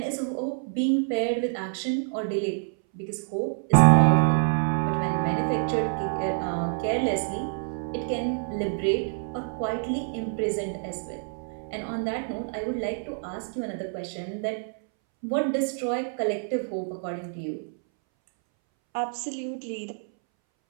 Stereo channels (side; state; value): left; silent; 60 dB below the other